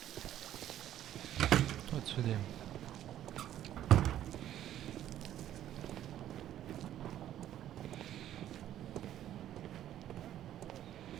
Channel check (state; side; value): quieter; left; 11.8 dB